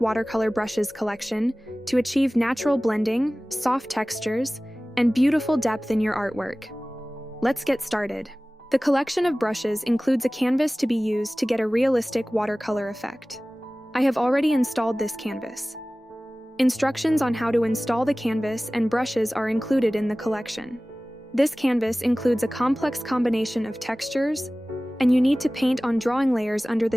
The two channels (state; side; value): normal; both; correlation 0.98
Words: Brushes collection to achieve natural blending, soft textures, and beautiful depth in your artwork. Let's get started. The collection of brushes includes a canvas to be used to get a realistic watercolor effect. I have already installed this canvas. Instructions on how to install the canvas and brushes are included in the collection. This canvas includes a complex combination of textures, and you need to paint on drawing layers under